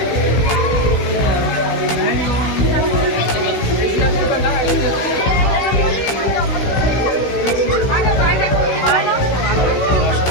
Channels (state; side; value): late; right; 16 ms